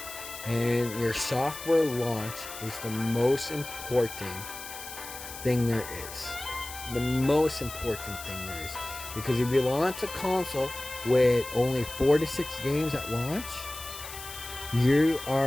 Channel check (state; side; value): noise; left; hiss, 11 dB below the sound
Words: And your software launch is the most important thing there is. The most important thing there is. Because if you launch a console with only 4 to 6 games at launch, you